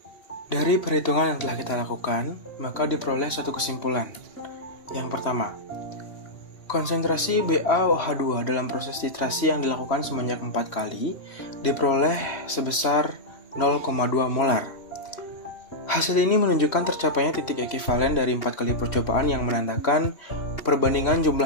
Dari perhitungan yang telah kita lakukan, maka diperoleh suatu kesimpulan. Yang pertama, konsentrasi BaOH2 dalam proses titrasi yang dilakukan sebanyak 4 kali diperoleh sebesar 0,2 molar. Hasil ini menunjukkan tercapainya titik ekivalen dari 4 kali percobaan yang menandakan perbandingan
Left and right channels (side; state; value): right; late; 3.1 ms